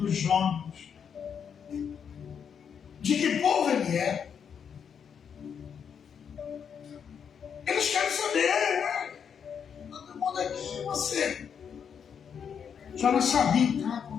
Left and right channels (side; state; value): right; quieter; 7.3 dB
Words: Jonas. De que povo ele é. Eles querem saber, todo mundo aqui, você. Jonas sabia o que estava